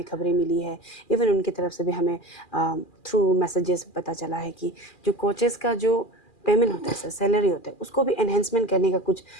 खबरें मिली है, इवन उनकी तरफ से भी हमें थ्रू मैसेजेस पता चला है कि जो कोचेस का जो पेमेंट होता है सर, सैलरी होता है, उसको भी एनहेंसमेंट करने का कुछ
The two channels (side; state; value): right; late; 2.4 ms